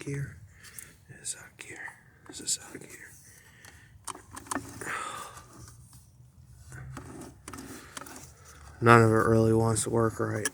It is out of gear. This is out of gear. None of it really wants to work right.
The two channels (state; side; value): identical; both; correlation 1.00